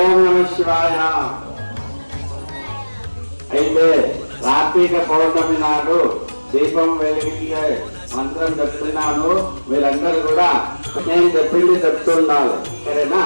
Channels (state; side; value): inverted; both; correlation -1.00